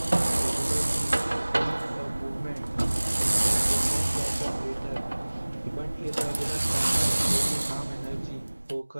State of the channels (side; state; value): both; inverted; correlation -1.00